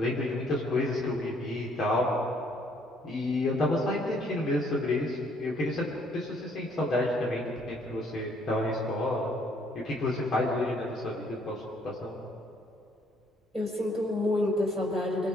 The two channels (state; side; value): normal; both; correlation 0.65